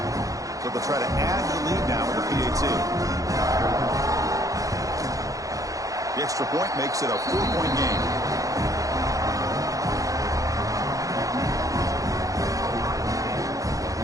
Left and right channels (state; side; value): late; left; 0.17 ms